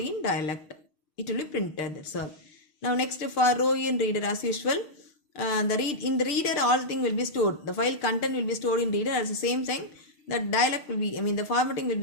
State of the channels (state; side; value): late; right; 6.5 ms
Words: in dialect. It will be printed. That's all. Now next for row in reader, as usual, in the reader all thing will be stored. The file content will be stored in reader. At the same time, the dialect will be, the formatting will